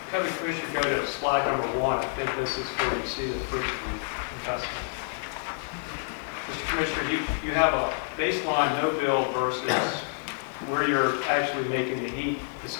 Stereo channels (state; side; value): silent; right; digital silence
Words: have the Commissioner go to slide number 1, I think this is where you see the fruits of the investment. Mr. Commissioner, you have a baseline no build versus where you're actually making the heat